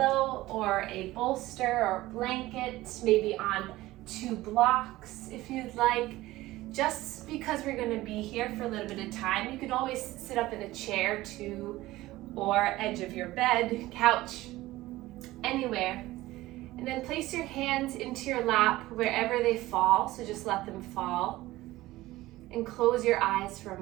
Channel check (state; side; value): quieter; left; 17.5 dB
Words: or a bolster or blanket, maybe on 2 blocks if you'd like. Just because we're going to be here for a little bit of time, you can always sit up in a chair too, or edge of your bed, couch, anywhere. And then place your hands into your lap wherever they fall, so just let them fall. And close your eyes for a